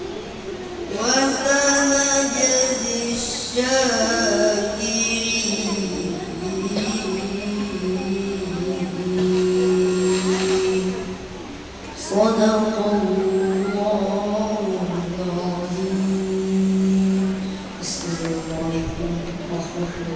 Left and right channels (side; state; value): both; identical; correlation 1.00